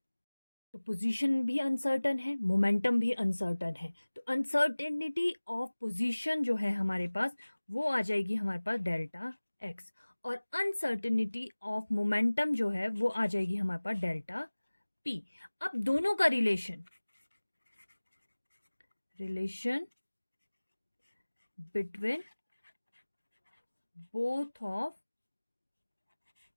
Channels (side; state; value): both; inverted; correlation -1.00